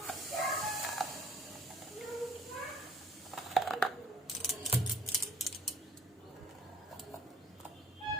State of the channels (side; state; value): both; normal; correlation 0.54